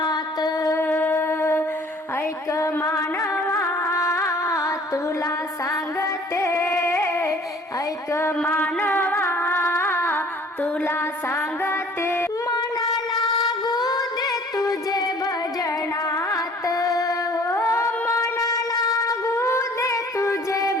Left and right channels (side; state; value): both; normal; correlation 0.52